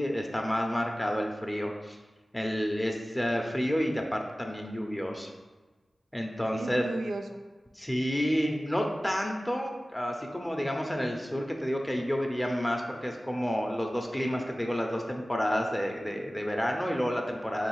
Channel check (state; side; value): normal; both; correlation 0.97